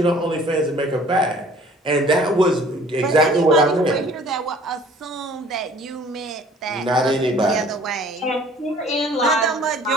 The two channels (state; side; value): normal; both; correlation 0.52